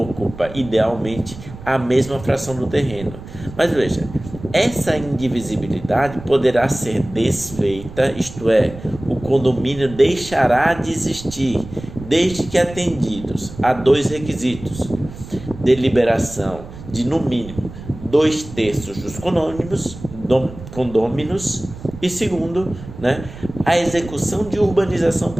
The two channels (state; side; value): noise; right; rumble, 14 dB below the sound